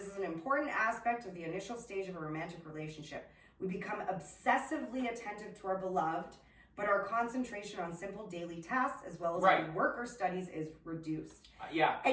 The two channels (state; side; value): identical; both; correlation 1.00